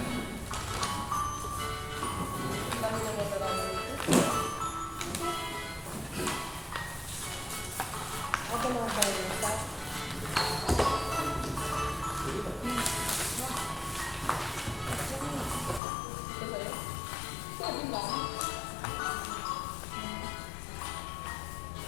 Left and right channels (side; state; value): right; drops out; at 15.8 s